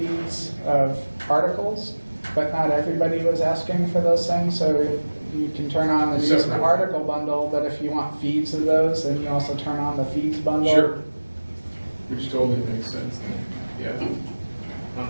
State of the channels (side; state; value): both; inverted; correlation -1.00